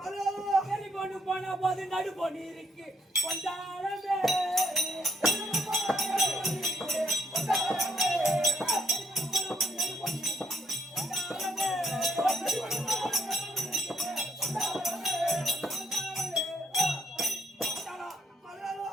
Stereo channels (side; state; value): both; normal; correlation 0.72